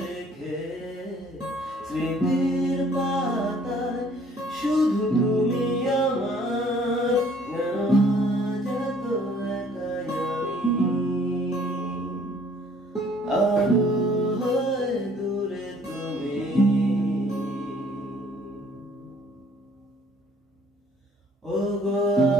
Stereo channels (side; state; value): both; normal; correlation 0.58